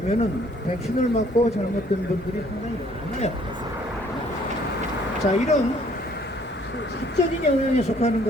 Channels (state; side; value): normal; both; correlation 0.61